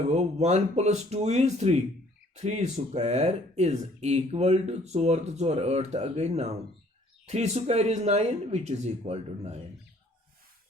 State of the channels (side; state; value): both; normal; correlation 0.59